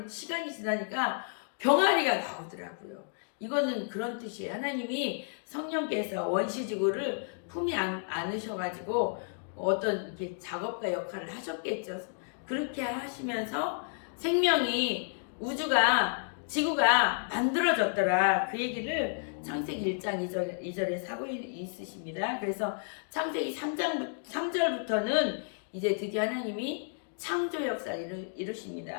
시간이 지나니까 병아리가 나오더라고요. 이거는 그런 뜻이에요. 하나님이 성령께서 원시지구를 품에 안으셔가지고 어떤 이렇게 작업가 역할을 하셨겠죠. 그렇게 하시면서 생명이 우주가 지구가 만들어졌더라. 그 얘기를 창세기 1장 2절에 사고 있으십니다. 그래서 창세기 3절부터는 이제 드디어 하나님이 창조 역사를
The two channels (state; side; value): silent; right; digital silence